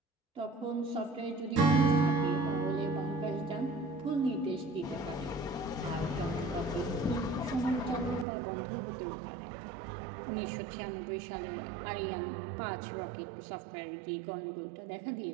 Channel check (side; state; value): left; drops out; at 8.2 s